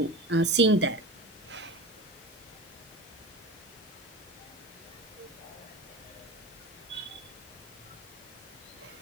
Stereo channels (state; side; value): normal; both; correlation 0.30